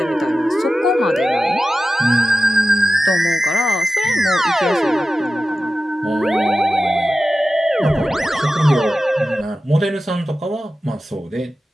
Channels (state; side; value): normal; both; correlation 0.94